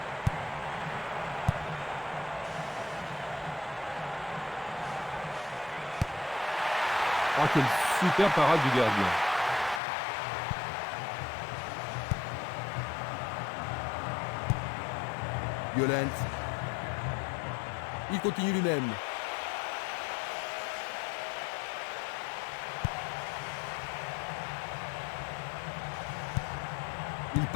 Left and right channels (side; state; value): right; drops out; at 9.8 s